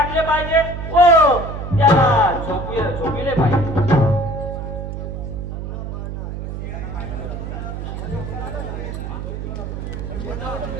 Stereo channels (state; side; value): noise; right; hum, 6 dB below the sound